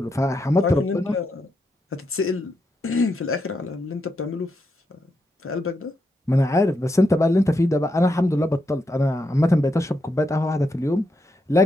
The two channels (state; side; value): normal; both; correlation 0.83